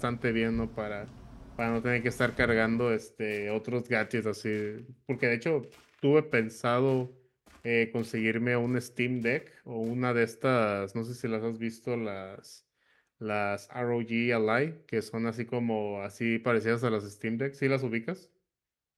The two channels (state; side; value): identical; both; correlation 1.00